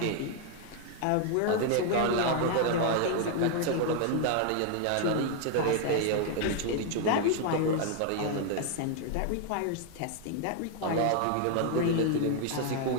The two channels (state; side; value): different; both; correlation 0.00